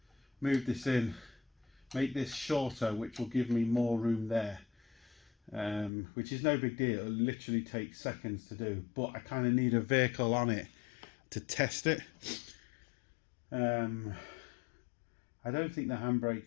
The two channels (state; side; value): drops out; right; at 5.9 s